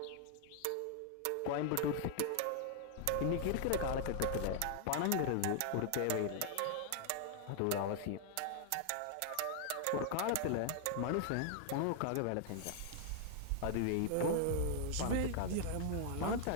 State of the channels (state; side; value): different; both; correlation 0.00